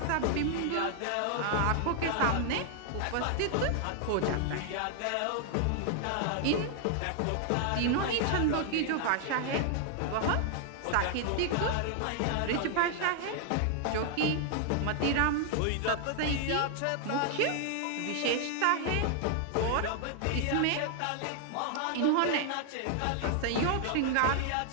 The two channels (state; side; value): different; both; correlation 0.00